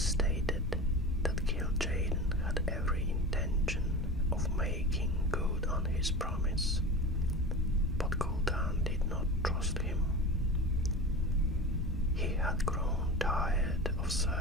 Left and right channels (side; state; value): both; normal; correlation 0.31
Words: stated that gul'dan had every intention of making good on his promise, but gul'dan did not trust him. He had grown tired of